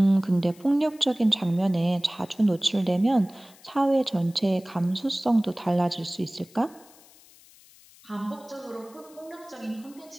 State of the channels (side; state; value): left; noise; hiss, 25 dB below the sound